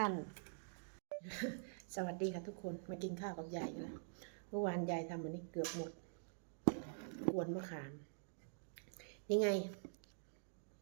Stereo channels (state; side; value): silent; left; digital silence